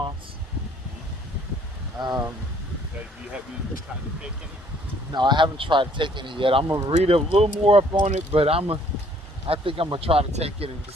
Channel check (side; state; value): both; normal; correlation 0.61